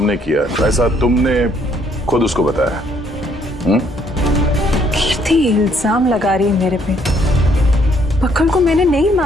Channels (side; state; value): both; normal; correlation 0.67